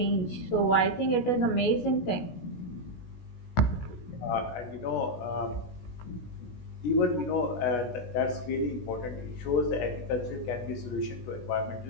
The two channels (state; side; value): late; right; 16 ms